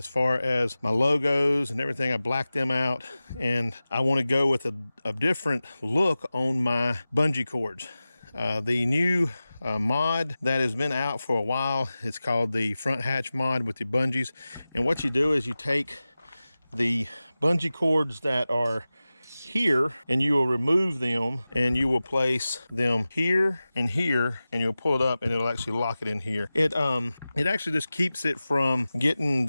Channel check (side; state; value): both; inverted; correlation -0.96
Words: far as my logos and everything. I black them out, and I want to go with a different look on my bungee cords. The new mod that has been out for a while, it's called the front hatch mod with the bungees. And what you do is you take the bungee cords that are here, and you will remove them, and you will place them here and here, and you'll pull it up, and it'll actually lock it in here. It actually just keeps it from getting